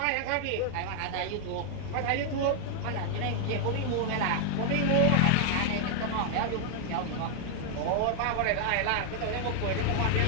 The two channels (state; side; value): different; both; correlation 0.00